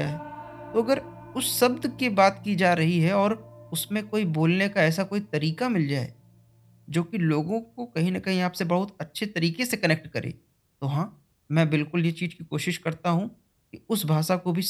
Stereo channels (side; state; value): both; identical; correlation 1.00